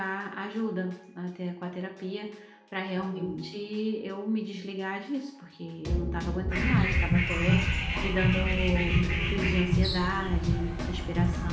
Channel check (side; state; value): both; identical; correlation 1.00